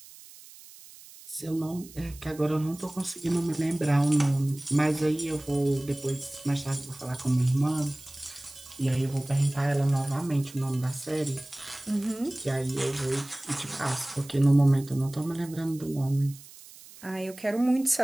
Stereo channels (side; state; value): right; noise; hiss, 19 dB below the sound